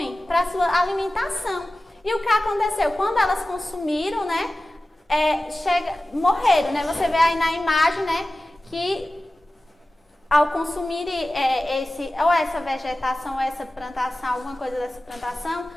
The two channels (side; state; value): both; normal; correlation 0.96